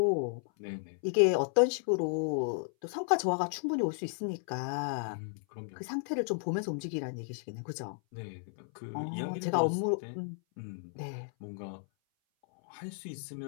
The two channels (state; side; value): silent; right; 55 dB below the other